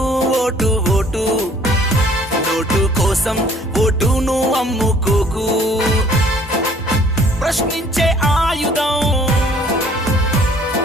vote vote note కోసం ఓటును అమ్ముకోకు ప్రశ్నించే ఆయుధం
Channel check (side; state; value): both; normal; correlation 0.57